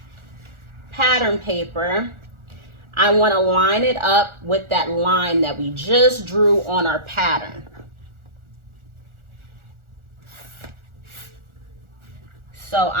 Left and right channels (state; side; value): late; left; 1.4 ms